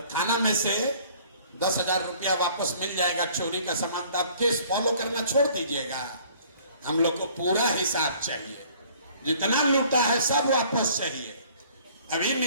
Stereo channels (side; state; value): both; inverted; correlation -0.55